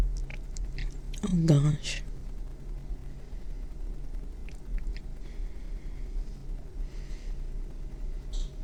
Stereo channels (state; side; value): identical; both; correlation 1.00